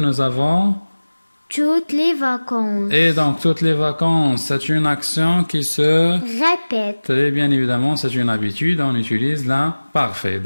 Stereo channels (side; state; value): both; inverted; correlation -1.00